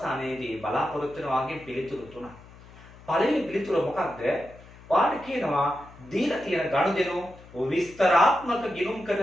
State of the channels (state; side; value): noise; left; hum, 21 dB below the sound